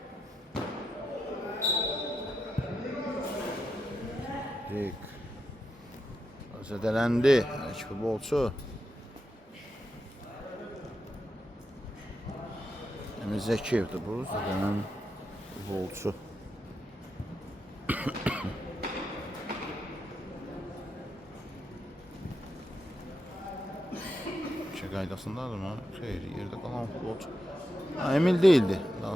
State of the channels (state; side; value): normal; both; correlation 0.86